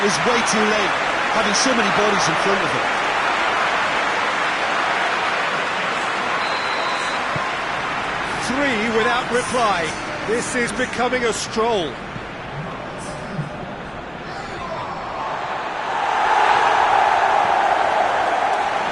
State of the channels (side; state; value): both; identical; correlation 1.00